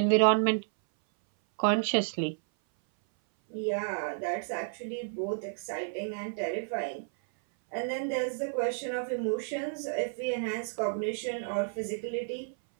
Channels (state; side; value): silent; left; 57 dB below the other